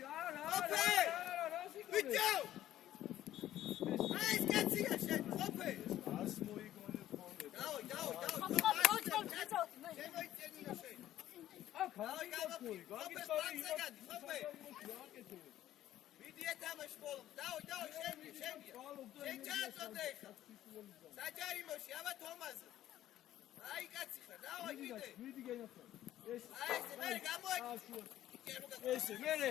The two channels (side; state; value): right; quieter; 13.0 dB